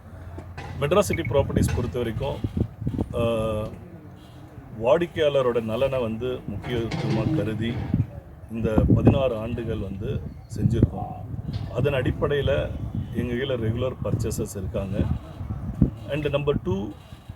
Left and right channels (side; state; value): both; identical; correlation 1.00